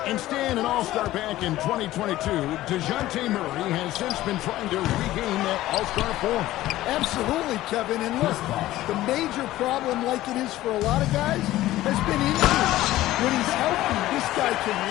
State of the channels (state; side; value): quieter; right; 15.6 dB